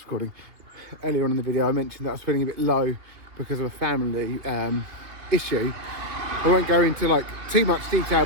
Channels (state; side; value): late; left; 2.8 ms